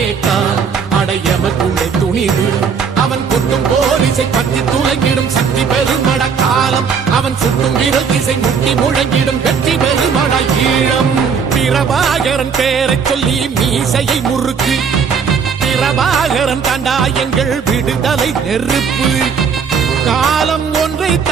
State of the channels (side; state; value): left; quieter; 6.3 dB